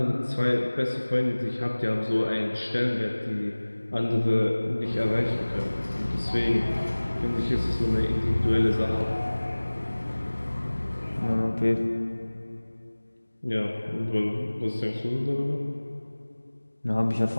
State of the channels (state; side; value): inverted; both; correlation -1.00